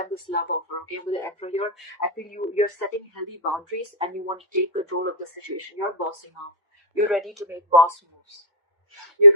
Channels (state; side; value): normal; both; correlation -0.14